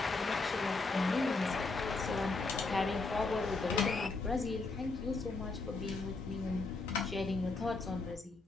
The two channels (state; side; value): quieter; right; 3.7 dB